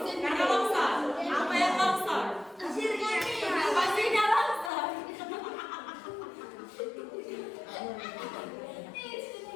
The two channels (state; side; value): drops out; right; at 4.7 s